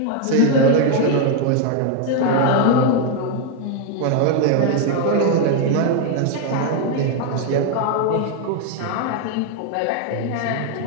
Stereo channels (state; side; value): different; both; correlation 0.01